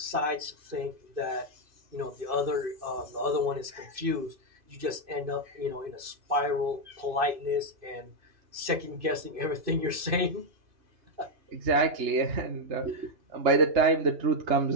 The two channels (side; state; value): left; late; 2.6 ms